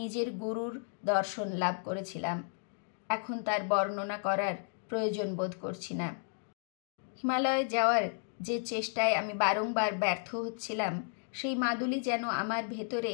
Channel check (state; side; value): silent; right; 56 dB below the other